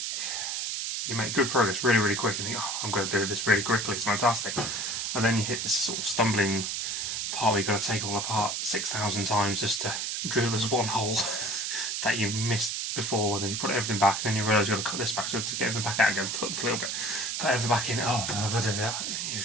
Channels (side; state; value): right; noise; hiss, 2 dB below the sound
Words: You make good progress really quick and think, oh, I'm going to do this really quickly, it's fantastic. And then you hit this sort of stumbling part where you've got to take it all apart 6,000 times just to drill this one hole that you missed before, and then you put everything back, and then you realise you've got to cut this back, so to get everything back out again, cut a little bit, put everything back in, oh, I've got to do that.